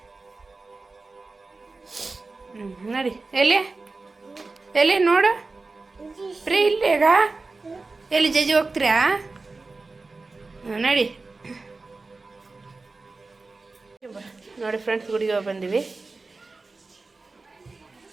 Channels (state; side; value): quieter; left; 3.7 dB